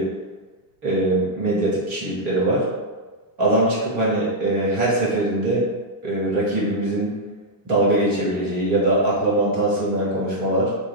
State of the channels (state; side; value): late; left; 3.2 ms